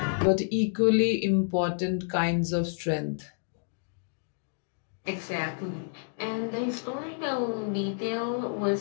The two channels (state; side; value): silent; right; digital silence